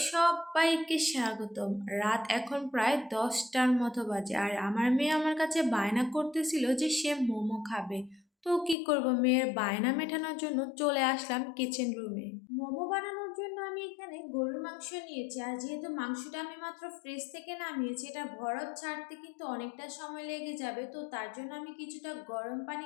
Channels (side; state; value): right; drops out; at 8.8 s